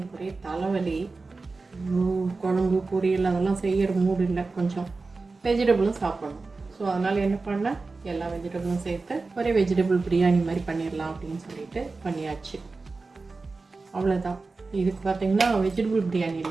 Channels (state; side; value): quieter; left; 3.8 dB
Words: ஒரே தலைவலி, குழம்பு பொரியல் அதெல்லாம் செய்கிற மூடு இல்லை. கொஞ்சம் வெஜிடபிளும் சாப்பிடணும். ஸோ அதனால் என்ன பண்ணேன், எல்லா வெஜிடபிளும் சேர்த்து ஒரே வெஜிடபிள் பிரியாணி மாதிரி பண்ணிடலாம் அப்படின்னு சொல்லிட்டு பண்ணியாச்சு. அவ்வளோதான். இதுக்கு பார்த்தீங்கன்னா வெஜிடபிள் பிரியாணி